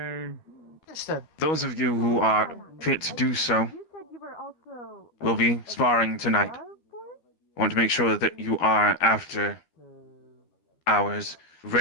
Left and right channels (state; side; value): late; right; 13 ms